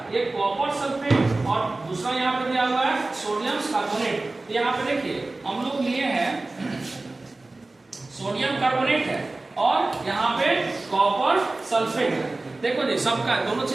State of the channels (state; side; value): quieter; left; 3.1 dB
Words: एक कॉपर सल्फेट और दूसरा यहाँ पे दिया हुआ है सोडियम कार्बोनेट। यहाँ पे देखिए हम लोग लिए हैं सोडियम कार्बोनेट है और यहाँ पे कॉपर सल्फेट है। देखो जी सबका दोनों